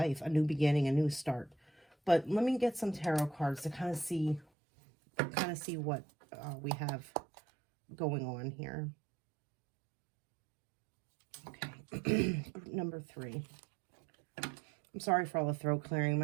a new beginning, a new start. But let me get some tarot cards to kind of see what we have going on here. Okay, group number 3. I'm sorry for all the throat clearing.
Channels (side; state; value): left; drops out; at 4.5 s